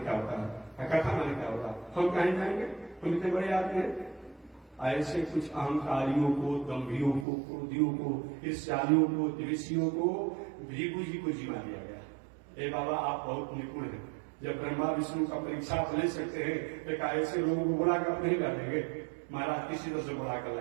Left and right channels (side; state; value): left; drops out; at 7.2 s